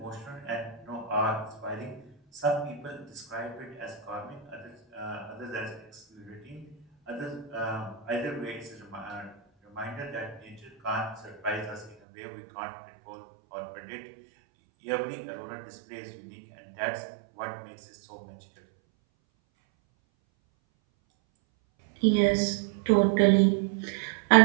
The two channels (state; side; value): drops out; left; at 12.0 s